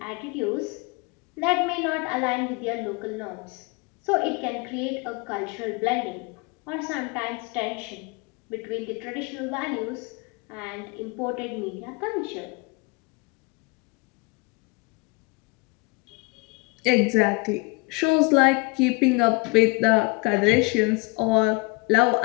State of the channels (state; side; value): quieter; right; 27.4 dB